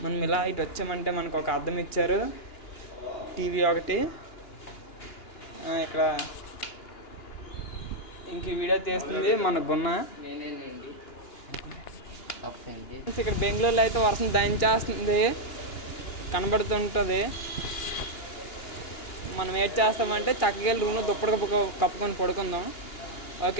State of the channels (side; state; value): right; late; 2.9 ms